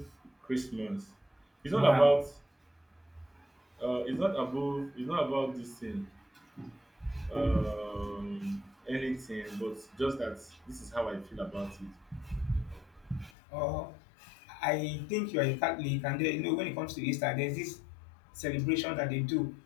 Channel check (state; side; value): drops out; right; at 13.3 s